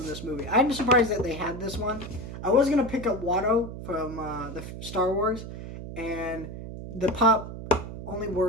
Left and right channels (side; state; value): right; noise; hum, 10 dB below the sound